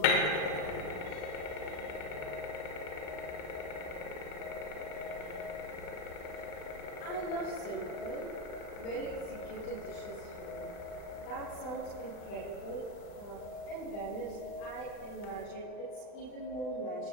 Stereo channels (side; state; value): right; late; 39 ms